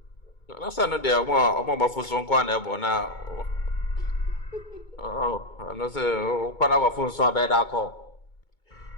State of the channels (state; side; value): late; right; 2.2 ms